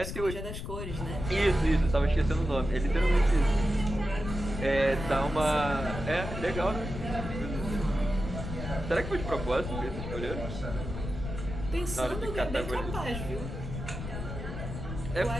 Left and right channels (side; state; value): left; noise; rumble, 7 dB below the sound